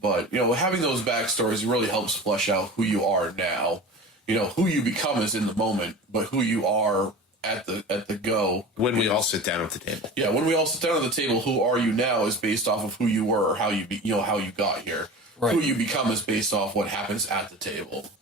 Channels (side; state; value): both; normal; correlation 0.34